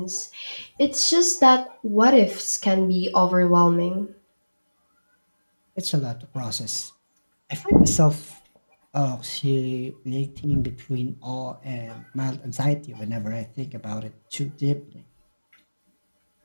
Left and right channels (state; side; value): inverted; both; correlation -1.00